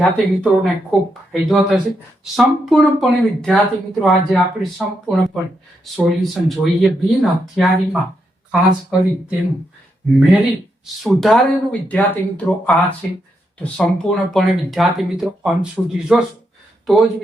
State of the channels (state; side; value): normal; both; correlation 0.81